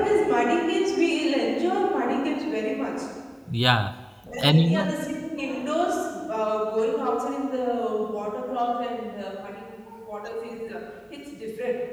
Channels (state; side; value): identical; both; correlation 1.00